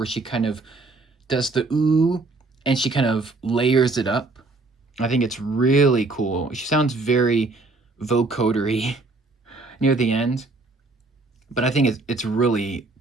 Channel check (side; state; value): left; quieter; 3.4 dB